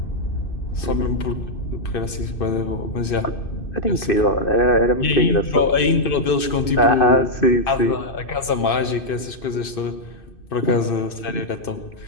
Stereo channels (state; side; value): late; right; 2.6 ms